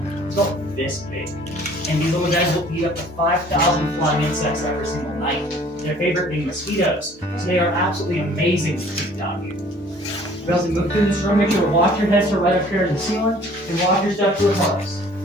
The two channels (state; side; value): normal; both; correlation 0.53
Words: It's about this big. And these little guys will eat up to 5,000 flying insects every single night. Their favorite being mosquitoes. So they are absolutely amazing to keep down here. We also move through this room, make sure to watch your heads to right up here in the ceiling, and watch your step to the hearts.